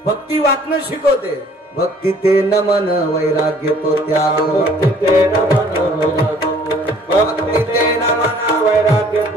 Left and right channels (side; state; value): both; normal; correlation 0.56